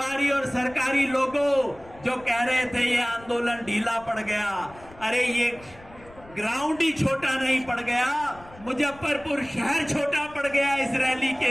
और सरकारी लोगों जो कह रहे थे ये आंदोलन ढीला पड़ गया। अरे ये ग्राउंड ही छोटा नहीं पड़ गया, मुजफ्फरपुर शहर छोटा पड़ गया इस रैली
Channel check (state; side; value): noise; left; rumble, 22 dB below the sound